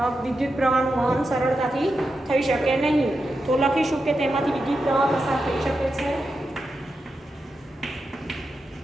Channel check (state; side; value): normal; both; correlation 0.88